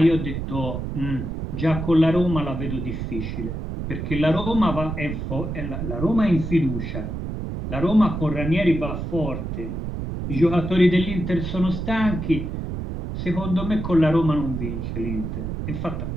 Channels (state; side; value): noise; right; rumble, 5 dB below the sound